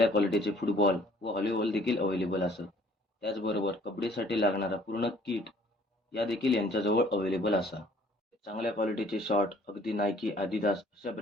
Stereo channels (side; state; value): both; normal; correlation 0.57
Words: क्वालिटीचे फुटबॉल व व्हॉलीबॉल देखील अवेलेबल असत. त्याचबरोबर कबड्डीसाठी लागणारा पूर्ण किट या देखील यांच्याजवळ अवेलेबल असा. चांगल्या क्वालिटीचे शॉर्ट अगदी नायकी, आदिदास अशा